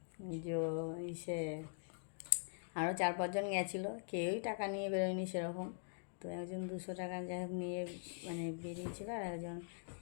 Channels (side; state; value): right; silent; digital silence